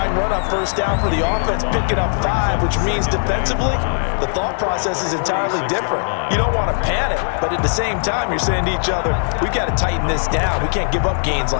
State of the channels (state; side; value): silent; right; digital silence